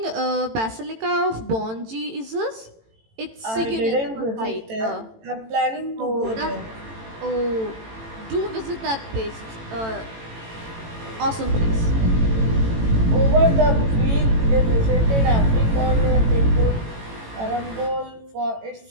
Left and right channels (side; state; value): left; late; 18 ms